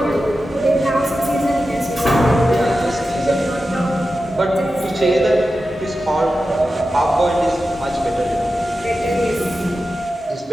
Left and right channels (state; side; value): normal; both; correlation 0.92